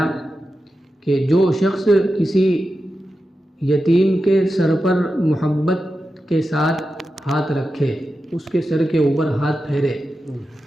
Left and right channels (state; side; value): normal; both; correlation 0.91